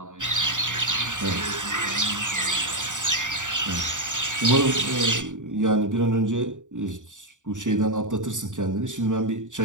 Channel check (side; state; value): left; late; 0.86 ms